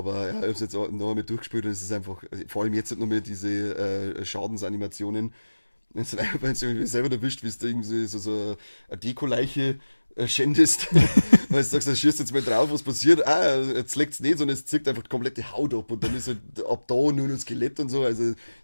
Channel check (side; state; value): both; inverted; correlation -1.00